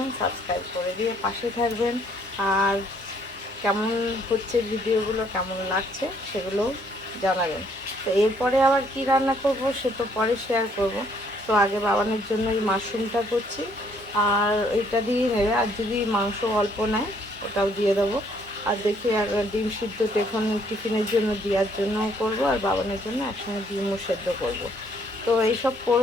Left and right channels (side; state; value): both; normal; correlation 0.66